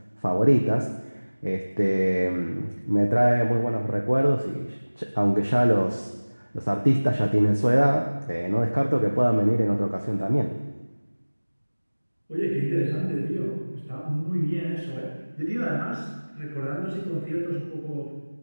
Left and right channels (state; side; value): inverted; both; correlation -1.00